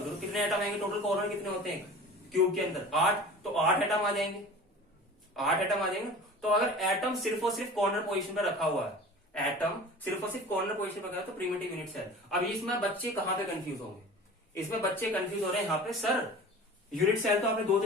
कितने एटम आएंगे टोटल, कॉर्नर कितने होते हैं क्यूब के अंदर, 8, तो 8 एटम आ जाएंगे, 8 एटम आ जाएंगे। तो अगर एटम सिर्फ और सिर्फ कॉर्नर पोजीशन पर रखा हुआ है, एटम सिर्फ और सिर्फ कॉर्नर पोजीशन पर रखा है, तो प्रिमिटिव यूनिट सेल। अब इसमें बच्चे कहां पे कंफ्यूज होंगे, इसमें बच्चे कंफ्यूज हो रहे हैं यहाँ पे, सर यूनिट सेल तो आपने दो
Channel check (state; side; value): normal; both; correlation 0.39